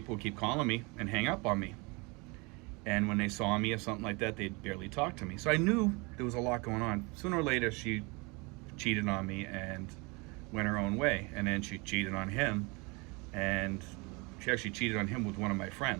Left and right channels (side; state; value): left; quieter; 28.1 dB